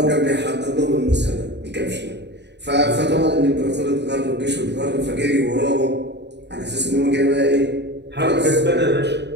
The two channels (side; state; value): left; late; 0.50 ms